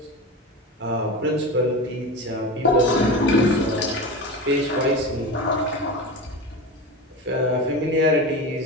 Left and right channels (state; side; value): normal; both; correlation 0.26